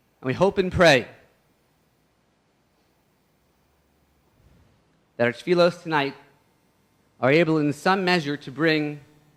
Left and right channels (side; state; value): both; identical; correlation 1.00